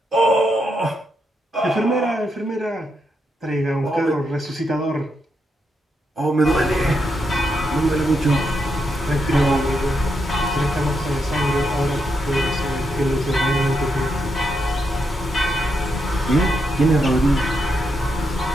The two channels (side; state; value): both; normal; correlation 0.82